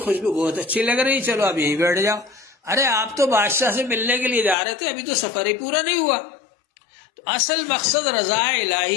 بہت اچھی لگ رہی، چلو اب یہیں بیٹھ جاؤ. ارے آپ تو بادشاہ سے ملنے کے لیے جا رہے تھے، ابھی تو سفر ہی پورا نہیں ہوا. تو اصل مقصد رضا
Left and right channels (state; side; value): drops out; right; at 4.5 s